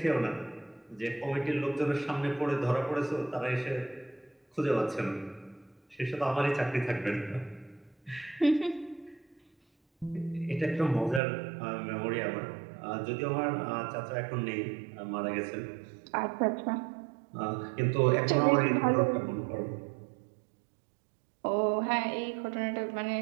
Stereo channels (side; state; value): left; drops out; at 11.2 s